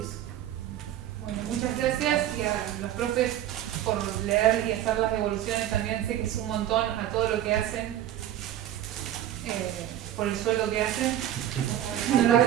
Bueno, muchas gracias y a los profes por leer y hacer las devoluciones. También sé que es un montón a todo lo que hacen, por el sueldo que hacen. No lo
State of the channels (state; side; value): quieter; left; 12.0 dB